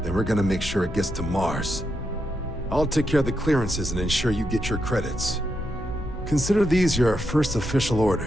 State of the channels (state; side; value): normal; both; correlation 0.83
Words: then we're gonna make sure it gets to Mars. I'll take care of the clearances and ensure you get your credits. Consider these your first official